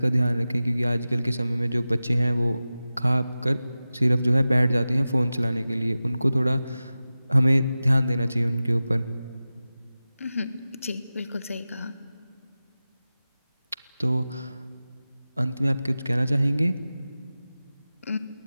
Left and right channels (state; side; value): inverted; both; correlation -0.95